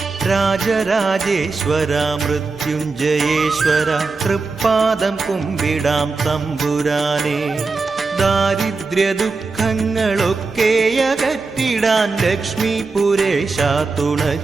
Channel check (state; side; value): quieter; left; 4.1 dB